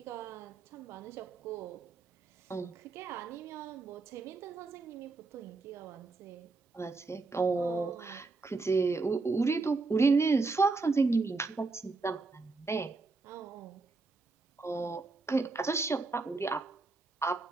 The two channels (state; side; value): quieter; left; 3.8 dB